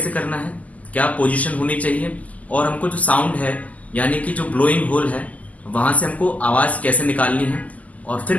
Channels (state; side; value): late; right; 0.075 ms